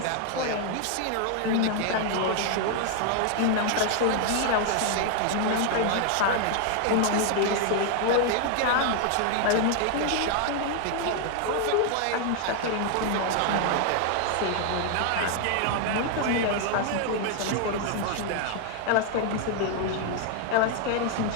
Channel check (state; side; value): different; both; correlation 0.00